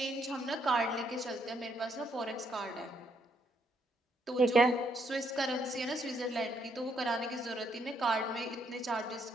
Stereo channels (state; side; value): normal; both; correlation 0.73